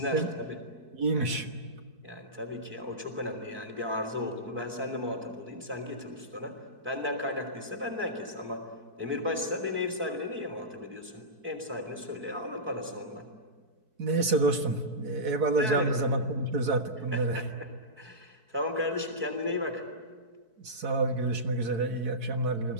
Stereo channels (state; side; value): late; left; 4.6 ms